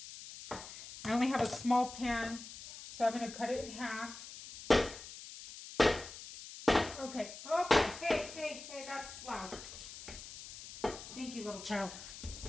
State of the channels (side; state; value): left; noise; hiss, 13 dB below the sound